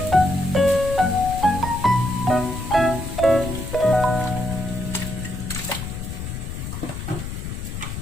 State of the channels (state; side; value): noise; left; rumble, 6 dB below the sound